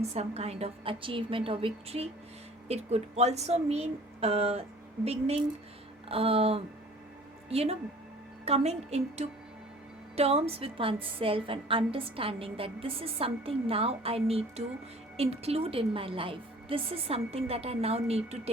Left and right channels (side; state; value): both; normal; correlation 0.49